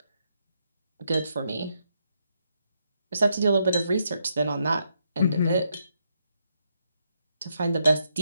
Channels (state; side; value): inverted; both; correlation -0.79